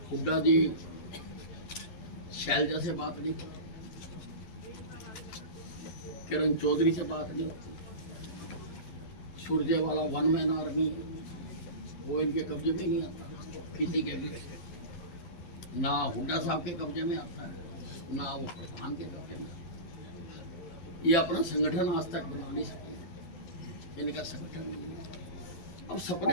हुड्डा जी शैलजा से बात नहीं होती, किरण चौधरी से बात नहीं होती, सुरजेवाला 1 मैन आर्मी वो इनके कब्जे में नहीं आता किसी के भी। ना हुड्डा साहब के कब्जे में आता है, ना वो प्रधान के कब्जे में। ये अपना संगठन आज तक बना नहीं सके, इनका संगठन नहीं है। अब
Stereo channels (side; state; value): right; late; 11 ms